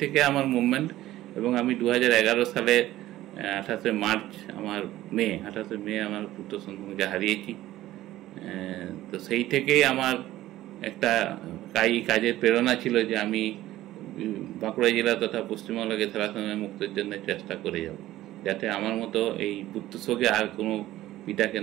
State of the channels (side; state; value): left; quieter; 15.1 dB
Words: থেকে আমার মুভমেন্ট, এবং আমি 2011 সালে 28 মার্চ আমার মেয়ে আমার পুত্র সন্তানকে হারিয়েছি। তো সেই থেকেই আমার একটা কাজের প্রেরণা ছিল যে আমি বাঁকুড়া জেলা তথা পশ্চিমবঙ্গকে থ্যালাসেমিয়া মুক্তের জন্য চেষ্টা করে যাব, যাতে আমার মতো এই পুত্রশোকে আর কোনো পিতাকে